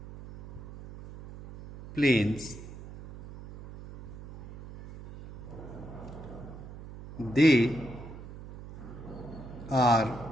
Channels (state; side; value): noise; right; hum, 14 dB below the sound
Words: plains. They are